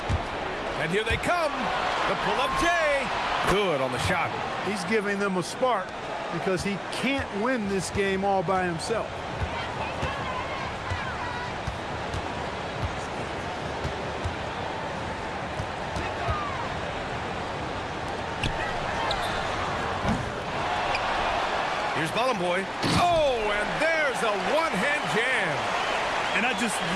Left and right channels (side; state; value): both; identical; correlation 1.00